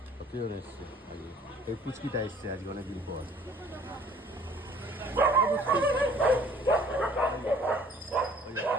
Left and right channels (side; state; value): both; normal; correlation 0.54